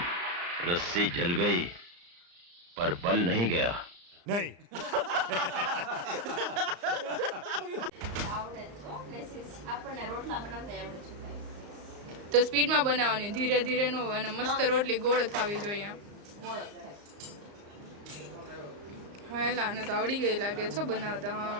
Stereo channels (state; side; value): late; left; 34 ms